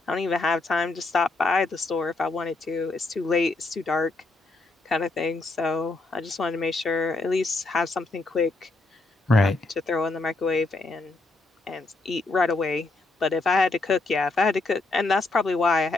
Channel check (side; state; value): right; quieter; 3.3 dB